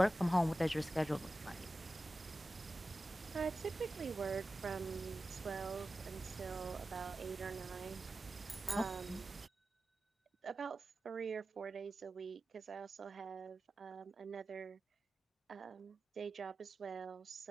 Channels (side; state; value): both; normal; correlation 0.94